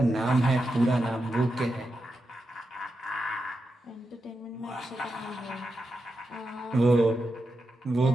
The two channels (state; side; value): normal; both; correlation 0.88